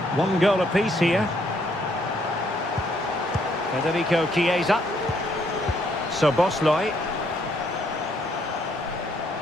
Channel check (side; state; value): both; normal; correlation 0.69